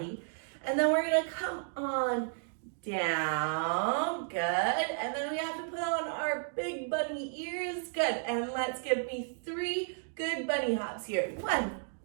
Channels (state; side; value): silent; left; digital silence